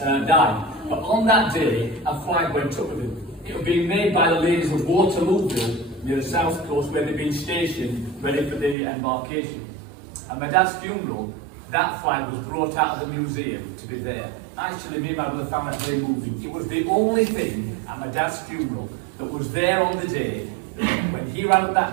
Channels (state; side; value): drops out; left; at 8.8 s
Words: had died. But on that day, a flag went up with him. It was being made by the ladies of Waterlooville, near the south coast, where they'd been stationed, ready for the embarkation. At my dad's funeral, that flag was brought out of the museum to be there. Actually, me and my brother found that very moving. It was the only thing at my dad's funeral that was there on the day when he ran up